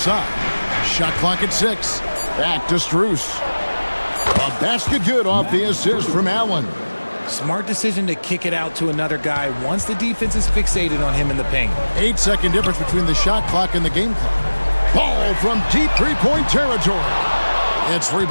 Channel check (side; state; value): both; inverted; correlation -1.00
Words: Shot clock at 6. Back to Strus. A basket good off the assist from Allen. Smart decision to kick it out to another guy once the defense is fixated on him in the paint. 8-second difference between the shot clock and the game clock. Ball from deep three-point territory. It's